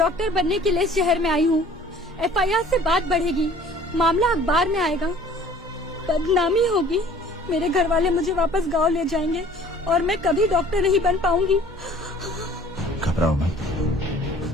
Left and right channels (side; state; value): both; normal; correlation 0.51